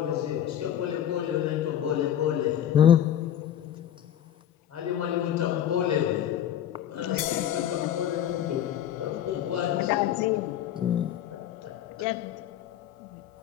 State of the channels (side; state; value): right; quieter; 10.5 dB